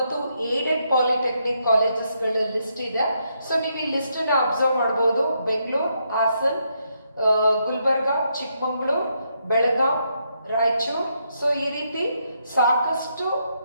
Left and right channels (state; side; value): inverted; both; correlation -0.78